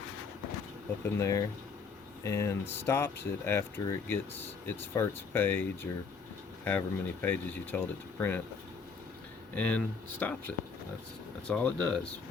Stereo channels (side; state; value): right; quieter; 5.2 dB